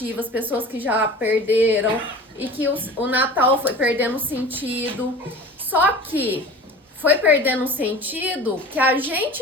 pessoas que já perderam e que o Natal foi perdendo sentido. Só que foi perdendo o sentido que a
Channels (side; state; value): both; normal; correlation 0.39